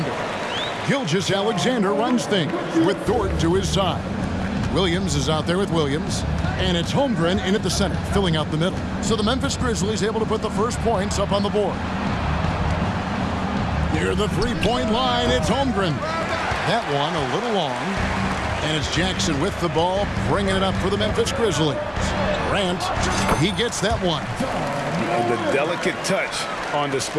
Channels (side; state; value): both; identical; correlation 1.00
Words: Gilgeous-Alexander runs things with Dort to his side. Williams is out there with Williams. And it's Holmgren in at the center, filling out the middle. So the Memphis Grizzlies able to put the first points up on the board. Near the three-point line, it's Holmgren. That one a little long. And it's Jackson with the ball, bringing it up for the Memphis Grizzlies. Grant, he gets that one. And the delicate touch on